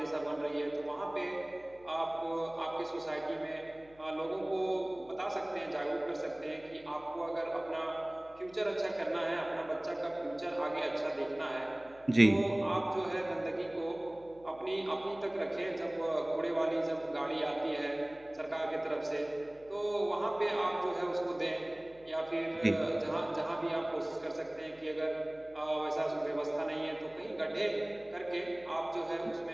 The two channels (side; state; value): left; noise; hum, 26 dB below the sound